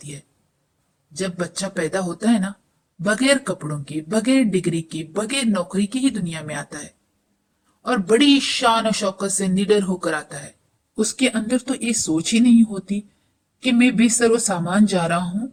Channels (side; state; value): both; identical; correlation 1.00